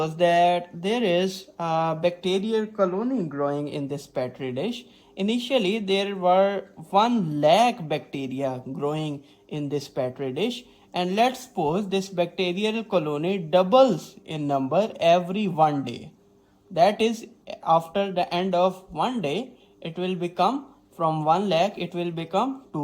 that there is a bacterial colony growing in this petri dish. Initially, there were 1 lakh bacteria growing in this petri dish, and let's suppose this bacterial colony doubles in number every 1 day. That is, after the end of 1 day, it will become from 1 lakh, it will become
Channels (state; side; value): identical; both; correlation 1.00